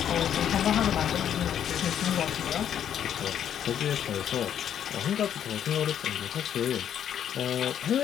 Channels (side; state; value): right; quieter; 9.6 dB